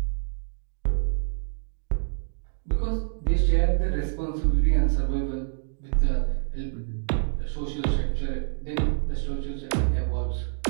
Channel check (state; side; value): silent; left; digital silence